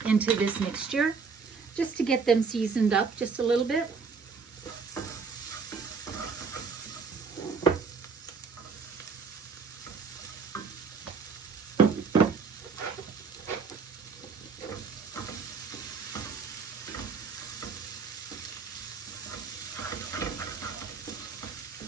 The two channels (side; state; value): left; quieter; 5.2 dB